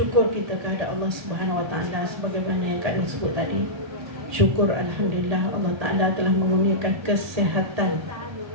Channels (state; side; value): late; left; 1.8 ms